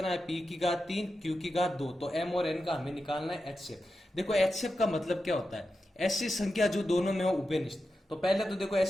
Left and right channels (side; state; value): both; normal; correlation 0.90